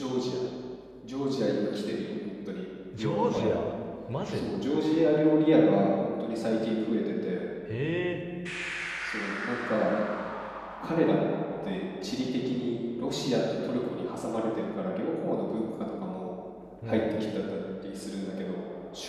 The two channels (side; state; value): both; identical; correlation 1.00